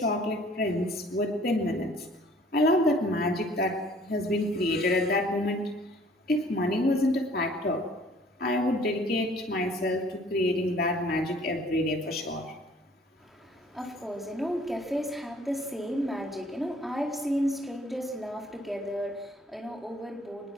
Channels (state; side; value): normal; both; correlation 0.56